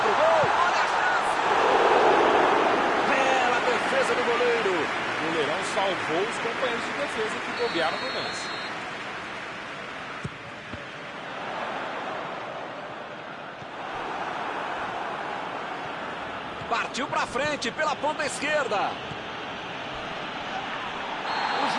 gol. Olha a chance. Bela defesa do goleiro. O goleirão salvou os companheiros de defesa que bobearam no lance. Partiu para frente pela ponta esquerda. O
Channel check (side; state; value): both; identical; correlation 1.00